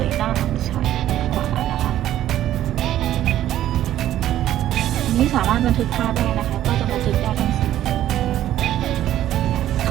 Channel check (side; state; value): left; quieter; 12.6 dB